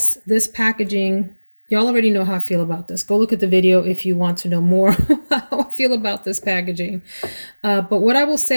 this packaging, y'all already know how I feel about this. Go look at the video if you want to know more how I feel about this packaging. But what I will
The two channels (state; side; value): inverted; both; correlation -1.00